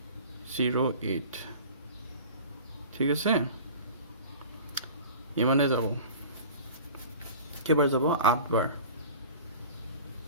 ঠিক আছে, ইমানে যাব। কেইবাৰ যাব? 8 বাৰ।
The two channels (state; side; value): inverted; both; correlation -0.40